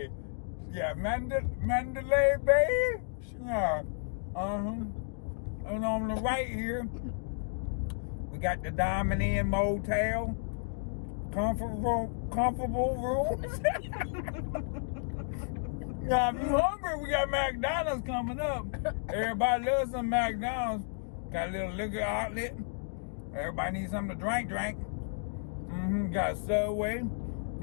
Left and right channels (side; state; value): right; silent; digital silence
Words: Yeah, Mandalay Bay. Yeah. And on the right here, we got the Diamond Inn Motel. Comfortable rooms. Now, if you hungry, we got McDonald's coming up. Everybody loves some McDonald's. Got a little liquor outlet. Everybody needs something to drink. Got Subway.